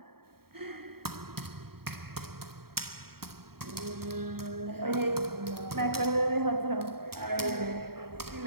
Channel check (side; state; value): left; late; 0.95 ms